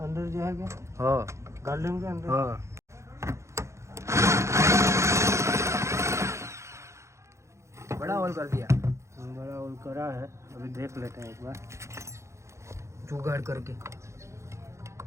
अंदर जो है क्या हाँ गार्डन के अंदर हाँ बड़ा होल कर दिया बड़ा होल करा है अभी देख लेते हैं एक बार जुगाड़ करके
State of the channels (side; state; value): left; late; 0.14 ms